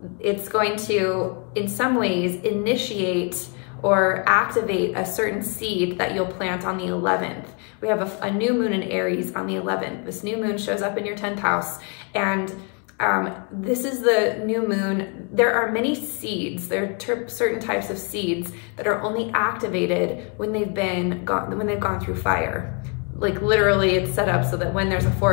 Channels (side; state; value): right; quieter; 35.5 dB